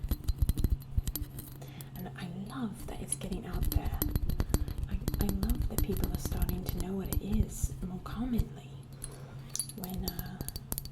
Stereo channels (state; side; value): identical; both; correlation 1.00